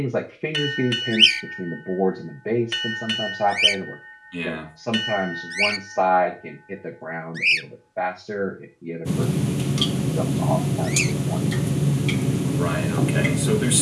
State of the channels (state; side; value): identical; both; correlation 1.00